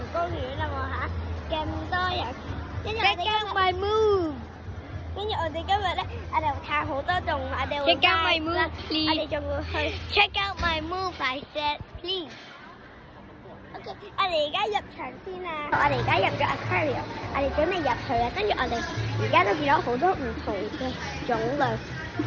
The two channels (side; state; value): both; identical; correlation 1.00